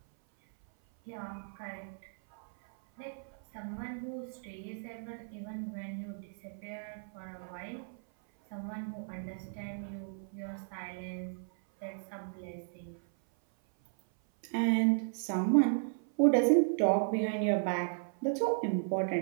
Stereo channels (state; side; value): silent; left; 55 dB below the other